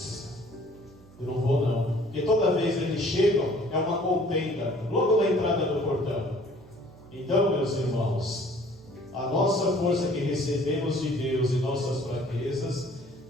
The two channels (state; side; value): noise; right; hum, 24 dB below the sound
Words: Eu não vou não. Porque toda vez eles chegam, é uma contenda, logo na entrada do portão. Então, meus irmãos, a nossa força que recebemos de Deus e nossas fraquezas